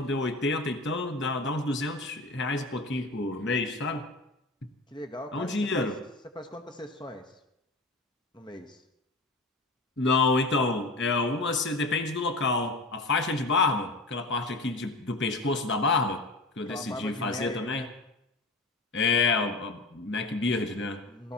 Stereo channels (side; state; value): right; quieter; 3.0 dB